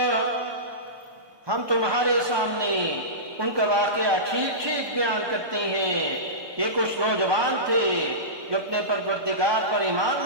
हम तुम्हारे सामने उनका वाकया ठीक ठीक बयान करते हैं। ये कुछ नौजवान थे जो अपने परवरदिगार पर ईमान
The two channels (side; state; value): left; late; 1.5 ms